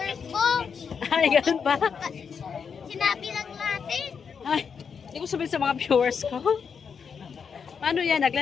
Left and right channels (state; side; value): quieter; right; 6.4 dB